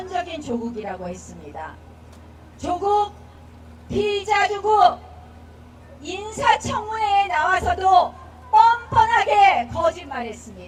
조국이라고 했습니다. 조국, 피의자 조국 인사청문회에 나와서도 뻔뻔하게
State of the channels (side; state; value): both; identical; correlation 1.00